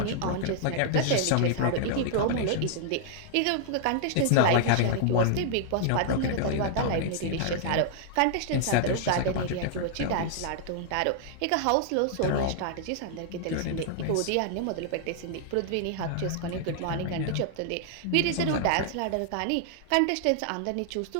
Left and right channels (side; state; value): both; different; correlation -0.01